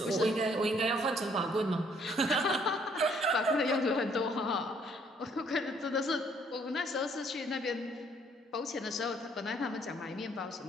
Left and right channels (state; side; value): normal; both; correlation 0.64